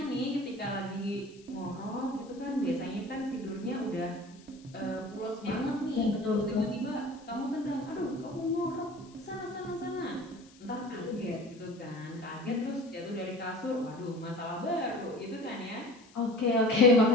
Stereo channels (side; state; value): left; noise; hiss, 26 dB below the sound